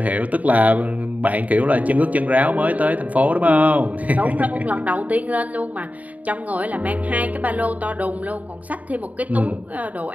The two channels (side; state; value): left; late; 0.072 ms